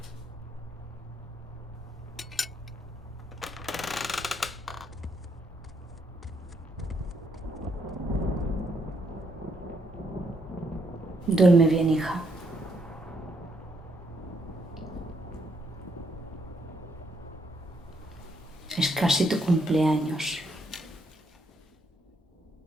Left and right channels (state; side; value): normal; both; correlation 0.73